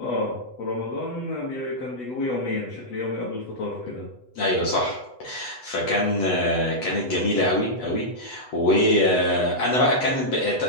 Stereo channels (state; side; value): late; right; 8.1 ms